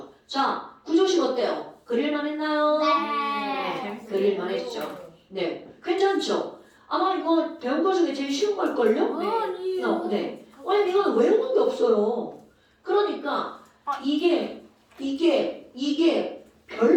자, 구조식 어때요? 그릴만 했나요? 네. 그릴만 했죠. 네, 괜찮죠? 아마 이거 배운 거 중에 제일 쉬운 걸걸요? 네. 왜냐면 이거는 외우는 게 없어요. 그러니까 이게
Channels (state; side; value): identical; both; correlation 1.00